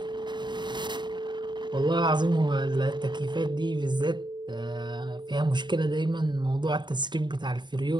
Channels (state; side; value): late; left; 0.22 ms